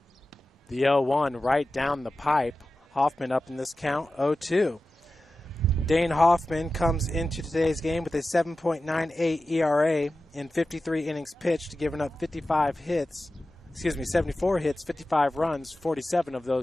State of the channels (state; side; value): normal; both; correlation 0.94